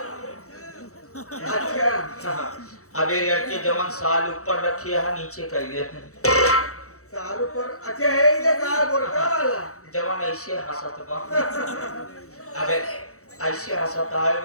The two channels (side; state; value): right; late; 0.65 ms